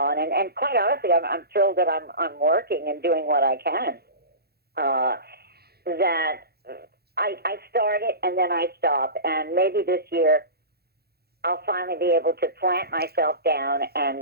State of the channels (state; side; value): late; left; 0.46 ms